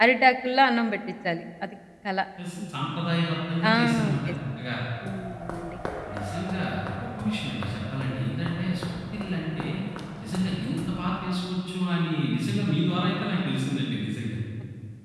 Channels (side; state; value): both; identical; correlation 1.00